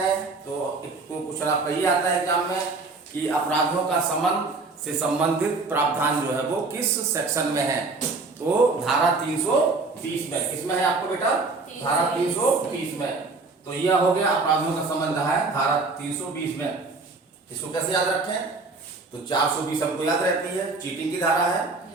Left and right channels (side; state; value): left; quieter; 3.7 dB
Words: तो एक तो क्वेश्चन आपका ये आता है एग्जाम में कि अपराधों का समन से संबंधित प्रावधान जो है वो किस सेक्शन में है। तो धारा 320 में, किसमें है आपको बेटा? धारा 320 में। तो यह हो गया अपराधों का संबंध है धारा 320 में। इसको कैसे याद रखें? तो 420 हमको याद रहती है, चीटिंग की धारा है।